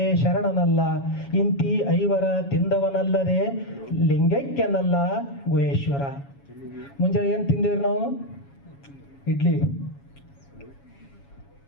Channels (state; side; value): late; right; 7.2 ms